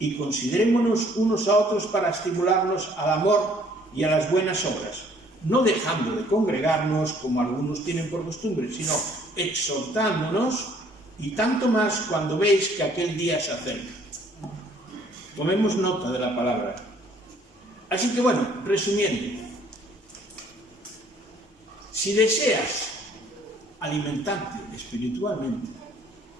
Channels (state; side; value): normal; both; correlation 0.60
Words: considerémonos unos a otros para estimularnos al amor y a las buenas obras, no dejando de congregarnos como algunos tienen por costumbre, sino exhortándonos, y tanto más cuando veis que aquel día se acerca. Tomemos nota de la palabra. Así que bueno, resumiendo, si deseas alimentarte espiritualmente,